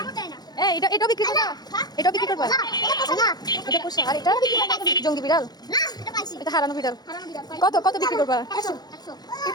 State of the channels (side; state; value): right; late; 0.19 ms